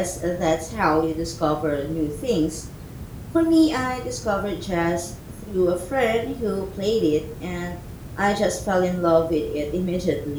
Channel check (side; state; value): both; identical; correlation 1.00